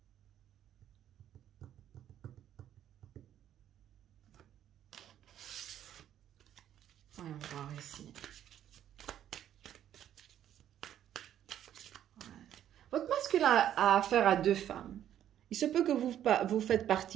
Voyons voir ici. Votre masculin a affaire à 2 femmes. Il se peut que vous faites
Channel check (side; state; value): left; quieter; 10.9 dB